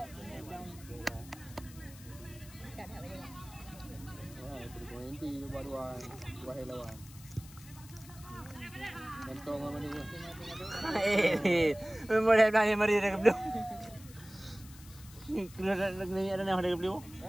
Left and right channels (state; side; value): noise; left; hiss, 19 dB below the sound